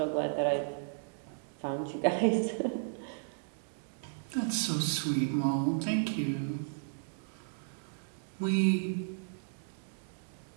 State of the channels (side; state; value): left; silent; digital silence